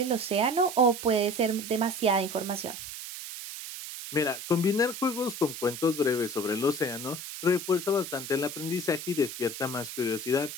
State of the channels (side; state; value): right; noise; hiss, 9 dB below the sound